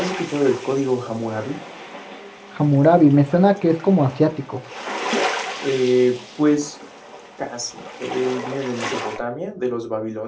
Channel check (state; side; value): identical; both; correlation 1.00